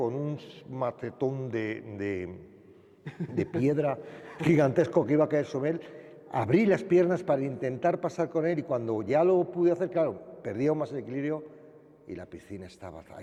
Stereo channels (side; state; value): both; identical; correlation 1.00